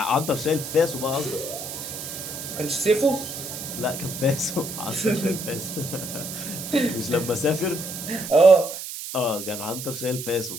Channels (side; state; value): right; noise; hiss, 8 dB below the sound